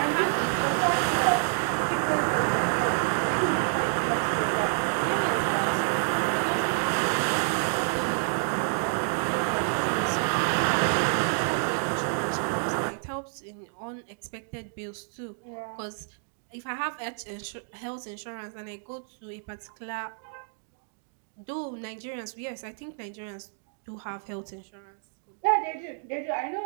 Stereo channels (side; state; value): left; silent; digital silence